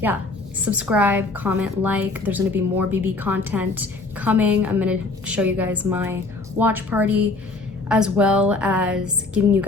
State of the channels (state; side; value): quieter; right; 3.4 dB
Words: subscribe, comment, like. There's gonna be more BB content coming. I'm gonna show you guys my watch party as well as giving you